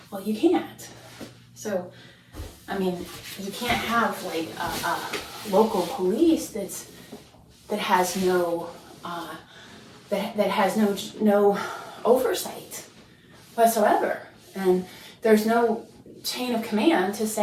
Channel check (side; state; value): both; identical; correlation 1.00